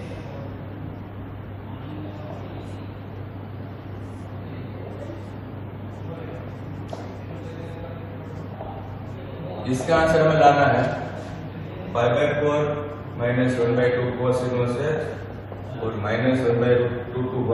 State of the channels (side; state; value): both; identical; correlation 1.00